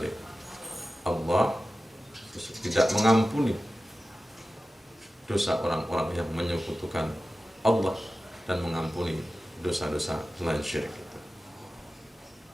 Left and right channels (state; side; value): normal; both; correlation 0.95